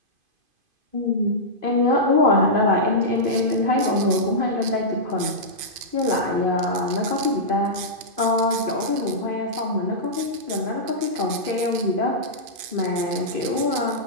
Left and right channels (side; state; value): left; late; 2.5 ms